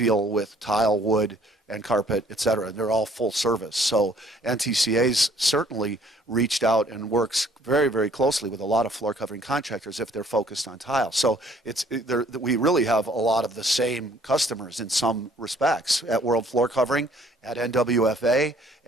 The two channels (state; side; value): normal; both; correlation 0.59